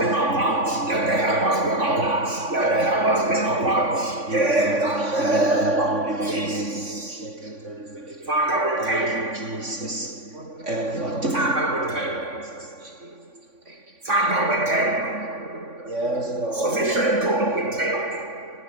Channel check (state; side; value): late; left; 3.5 ms